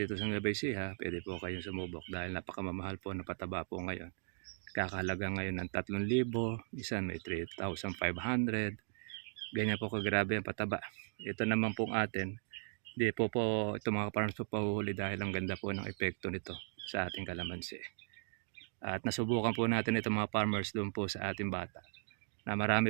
sa Nueva Ecija, pwede po kayong sumubok dahil napakamamahal po na pataba po ngayon. Kakahalaga ngayon ng 3,000, isa may 3,500. Ganyan po kagrabe ang pataba. Ito naman pong atin, di po ito mga farmers po pahuhuli dahil ang ganda po ng epekto nito sa ating kalamansi. At nasubukan po natin ito mga farmers doon po sa ating bata na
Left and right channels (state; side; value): silent; left; digital silence